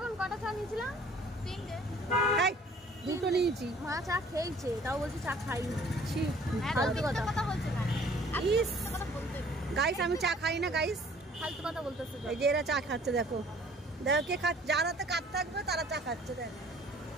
কটা চা নিয়েছিলাম? তিনটে। দুটো নিয়েছি। মা চা খেয়েছে, তাও বলছে চা খাইনি। ফালতু কথা বলছে না গাইস, আমি চা খাই না গাইস, ফালতু কথা বলতেছে। এই যে এরা চা খাচ্ছে, দেখো কে খাচ্ছে, যার হাতে কাপ থাকবে তারা চা খাচ্ছে। দেখ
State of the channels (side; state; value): both; normal; correlation 0.54